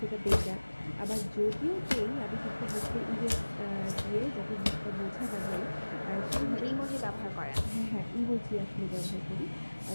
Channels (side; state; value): both; inverted; correlation -1.00